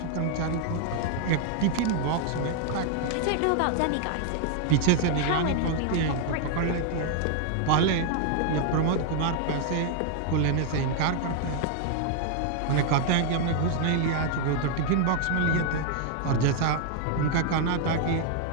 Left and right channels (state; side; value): different; both; correlation 0.00